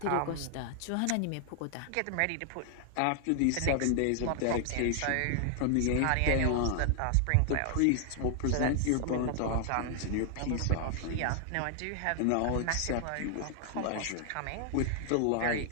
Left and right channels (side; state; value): both; different; correlation 0.00